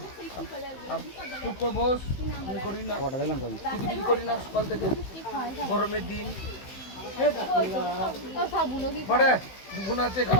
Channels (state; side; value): late; right; 15 ms